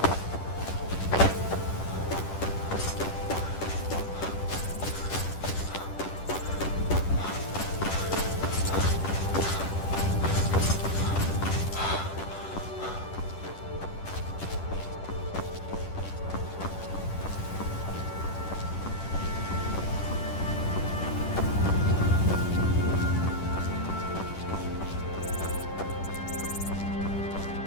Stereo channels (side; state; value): right; late; 10 ms